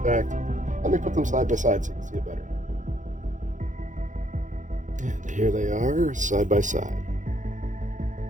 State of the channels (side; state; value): left; late; 0.36 ms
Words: fact, let me put them side by side so you can see it better. And here they are, side by side.